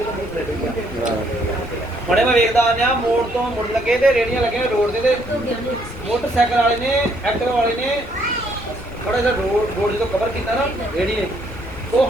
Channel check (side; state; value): left; noise; rumble, 15 dB below the sound